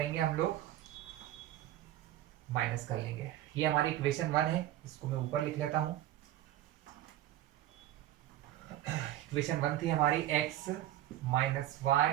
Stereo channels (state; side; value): quieter; left; 13.4 dB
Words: हम लोग माइनस कर लेंगे। ये हमारी इक्वेशन 1 है, इसको मैं ऊपर लिख लेता हूं। इक्वेशन 1 थी हमारी x minus